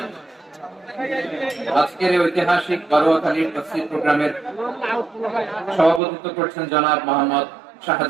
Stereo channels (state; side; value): drops out; left; at 6.0 s